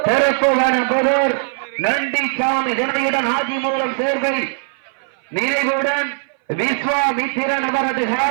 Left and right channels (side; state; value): left; silent; 59 dB below the other